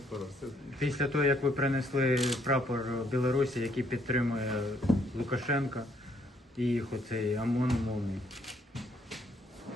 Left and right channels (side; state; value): both; normal; correlation 0.69